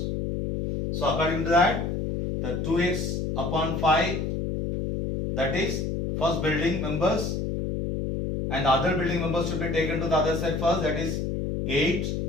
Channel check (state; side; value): noise; left; hum, 1 dB below the sound